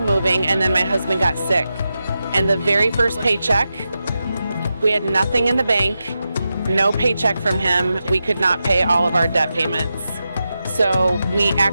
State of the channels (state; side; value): inverted; both; correlation -0.90